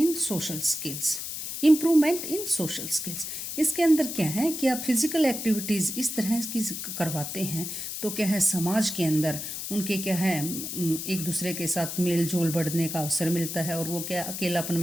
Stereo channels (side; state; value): left; noise; hiss, 6 dB below the sound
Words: social skills, improvement in social skills. इसके अंदर क्या है कि आप फिजिकल एक्टिविटीज इस तरह की करवाते हैं तो क्या है समाज के अंदर उनके क्या है एक दूसरे के साथ मेल जोल बढ़ने का अवसर मिलता है और वो क्या अकेलापन